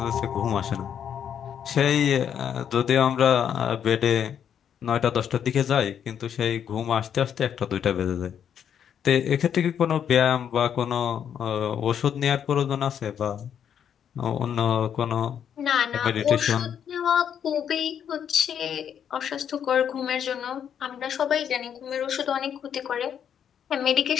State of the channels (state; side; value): quieter; right; 8.6 dB